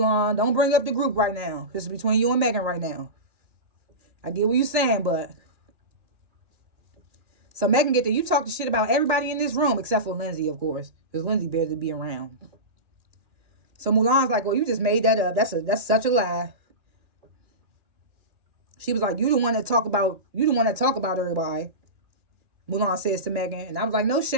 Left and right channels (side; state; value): left; late; 2.4 ms